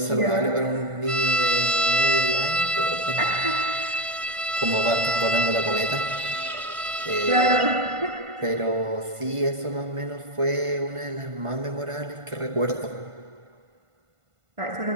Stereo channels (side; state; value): left; late; 1.5 ms